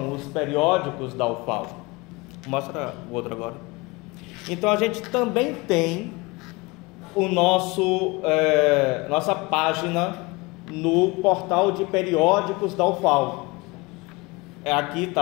os periódicos da UFAL. Mostra o outro agora. Então a gente também tem o nossa página no portal de periódicos da UFAL. Aqui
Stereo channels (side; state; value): right; quieter; 24.6 dB